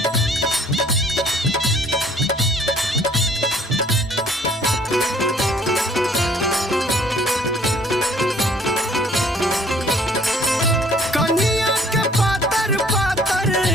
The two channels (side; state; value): both; normal; correlation 0.57